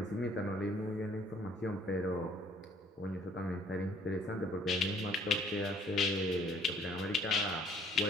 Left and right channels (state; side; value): normal; both; correlation 0.59